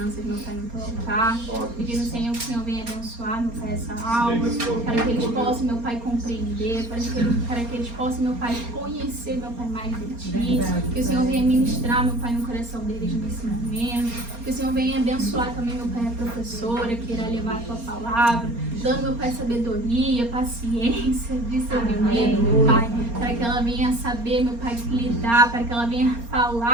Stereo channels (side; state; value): left; late; 4.3 ms